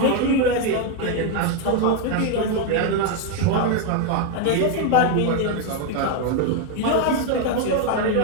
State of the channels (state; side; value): different; both; correlation 0.01